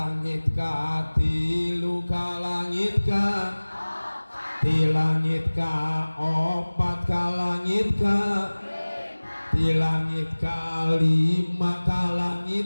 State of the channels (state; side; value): inverted; both; correlation -1.00